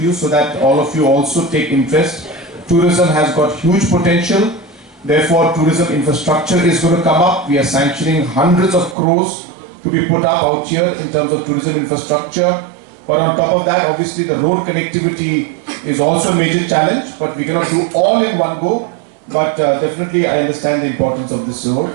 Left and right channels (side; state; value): left; drops out; at 9.0 s